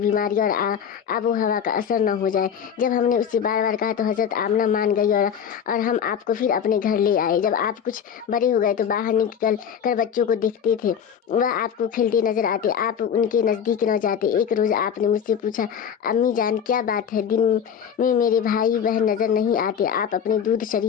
और आबो हवा का असर न हो जाए। जब हमने उससे बार बार कहा तो हजरत आमना मान गई और हम आपको फिर अपने घर ले आए। जब आप कुछ बड़े हो गए तो बाहर निकल कर बच्चों को देखते थे, वह आपको खेलते नजर आते, आप उनके नज़दीक न जाते। एक रोज़ आपने मुझसे पूछा, अम्मी जान क्या बात है, दिन में मेरे भाई बहन नज़र नहीं आते? आप अपने दूध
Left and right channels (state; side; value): quieter; right; 8.0 dB